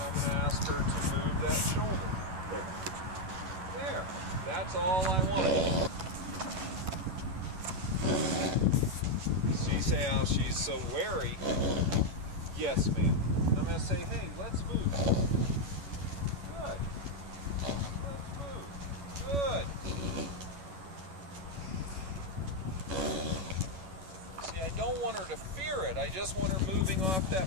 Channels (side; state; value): left; late; 11 ms